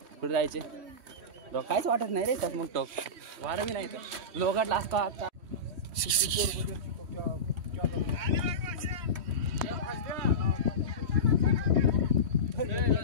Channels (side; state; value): left; late; 3.1 ms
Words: कुठे जायचे? काहीच वाटत नाही रे त्यात. मग टोक वारं बी नाही तर लोकांना असतो आता.